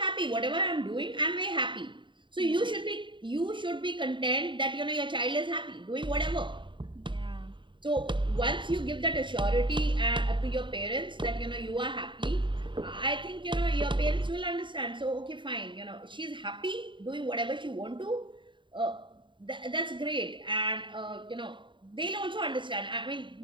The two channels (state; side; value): late; left; 0.23 ms